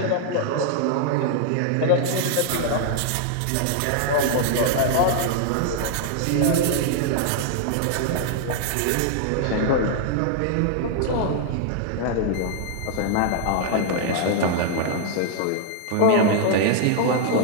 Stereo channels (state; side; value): different; both; correlation -0.01